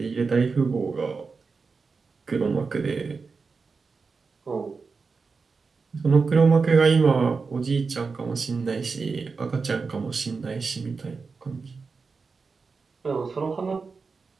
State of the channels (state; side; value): quieter; left; 4.7 dB